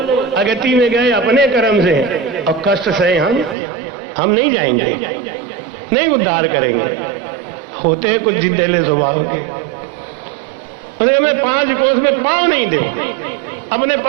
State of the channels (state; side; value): drops out; left; at 3.6 s